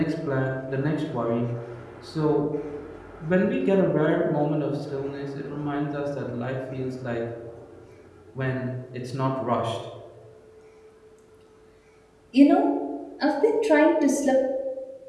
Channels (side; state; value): both; identical; correlation 1.00